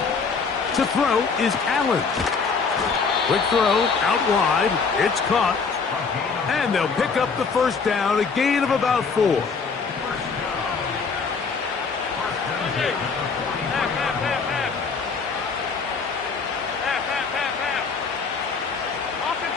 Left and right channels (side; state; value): right; quieter; 5.1 dB